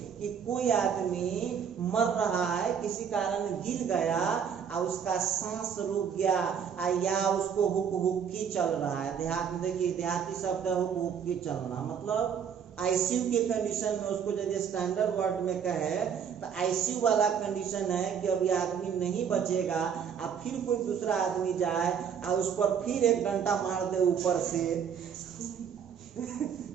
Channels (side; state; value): left; quieter; 7.6 dB